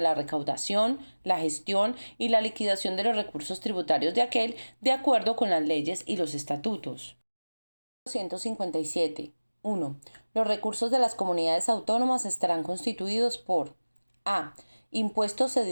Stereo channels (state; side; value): inverted; both; correlation -1.00